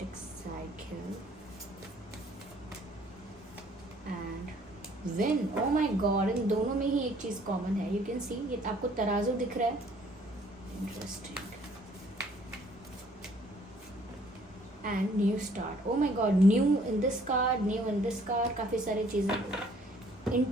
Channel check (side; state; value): both; normal; correlation 0.60